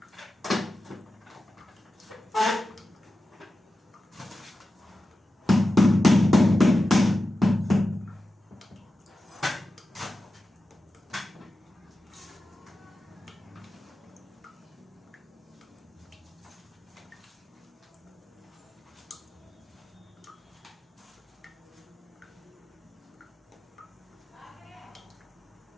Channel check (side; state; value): both; normal; correlation 0.92